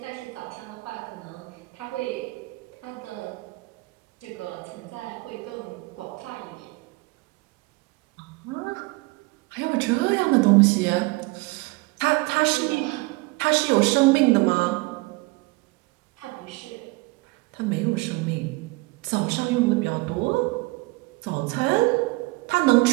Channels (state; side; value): quieter; left; 24.0 dB